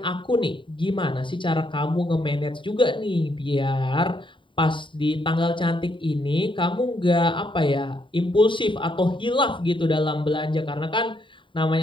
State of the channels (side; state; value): right; late; 0.24 ms